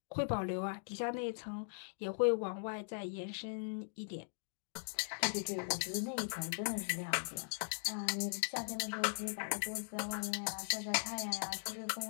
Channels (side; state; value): right; silent; digital silence